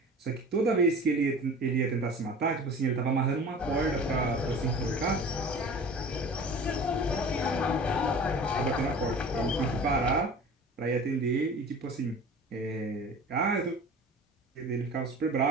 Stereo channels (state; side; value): normal; both; correlation 0.40